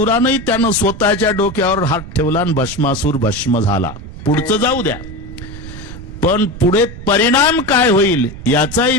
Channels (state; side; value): noise; right; rumble, 13 dB below the sound